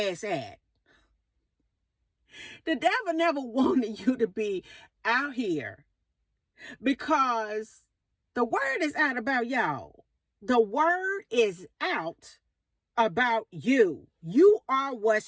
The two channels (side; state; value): both; identical; correlation 1.00